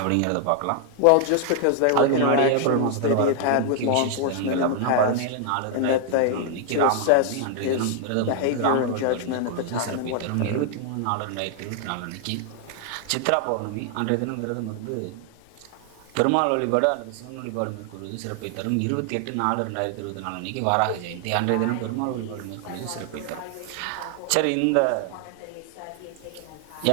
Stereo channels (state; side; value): different; both; correlation 0.00